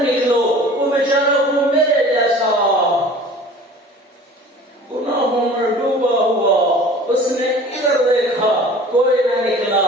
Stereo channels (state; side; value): normal; both; correlation 0.44